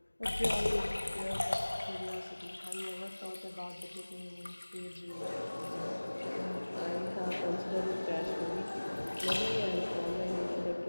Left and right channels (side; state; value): both; inverted; correlation -1.00